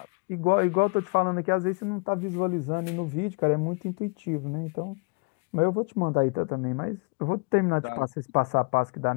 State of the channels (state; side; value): quieter; right; 30.4 dB